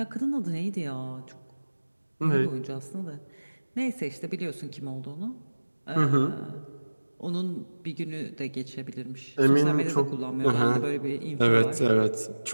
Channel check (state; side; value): inverted; both; correlation -1.00